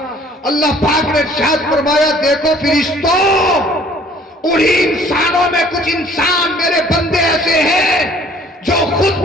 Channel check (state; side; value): normal; both; correlation 0.55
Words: اللہ پاک نے ارشاد فرمایا دیکھو فرشتوں انہی انسانوں میں کچھ انسان میرے بندے ایسے ہیں جو خود